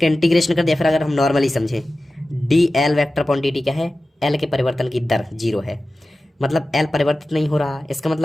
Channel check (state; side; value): normal; both; correlation 0.95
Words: इंटीग्रेशन कर दिया, फिर अगर हम नॉर्मली समझें, D L vector upon D T क्या है? एल के परिवर्तन की दर 0 है, मतलब एल परिवर्तित नहीं हो रहा। इसका